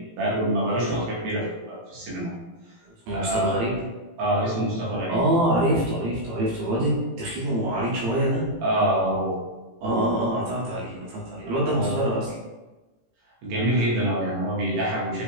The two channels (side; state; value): left; late; 18 ms